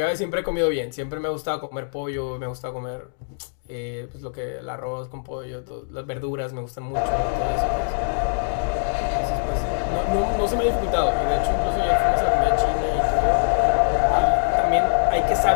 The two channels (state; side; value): silent; right; digital silence